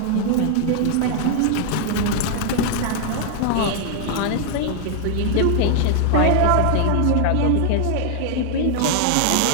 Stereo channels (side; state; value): both; different; correlation -0.01